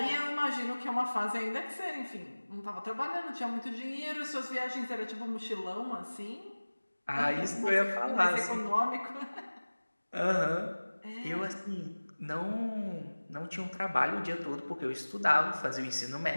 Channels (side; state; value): both; inverted; correlation -1.00